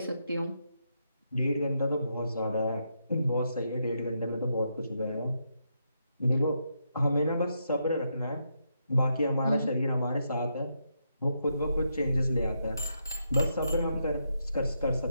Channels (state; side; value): inverted; both; correlation -0.81